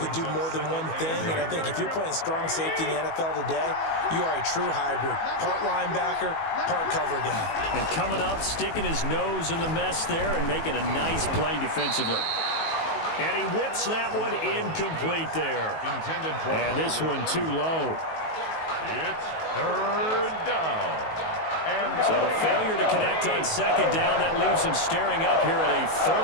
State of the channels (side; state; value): right; late; 19 ms